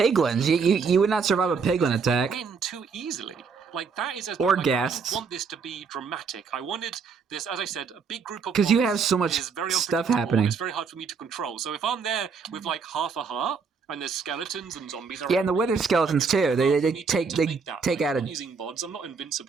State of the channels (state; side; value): quieter; left; 5.4 dB